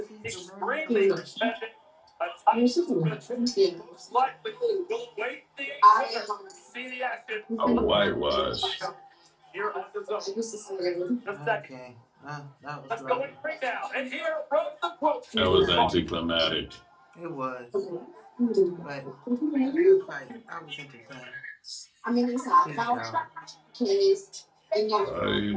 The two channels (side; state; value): both; identical; correlation 1.00